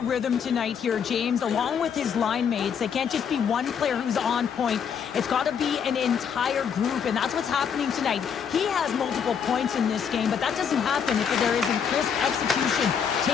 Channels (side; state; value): right; quieter; 7.3 dB